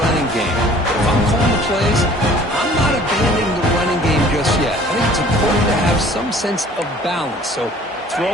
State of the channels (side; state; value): both; normal; correlation 0.52